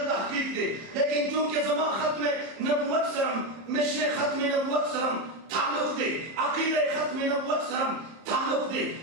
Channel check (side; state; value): left; late; 31 ms